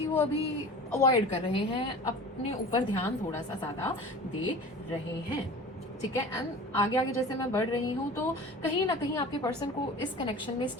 वो अभी अवॉइड कर रहे हैं, अपने ऊपर ध्यान थोड़ा सा ज़्यादा दे रहे हैं, ठीक है। एंड आगे आगे जैसे मैं बढ़ रही हूँ तो कहीं ना कहीं आपके पर्सन को इस कनेक्शन में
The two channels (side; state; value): both; normal; correlation 0.38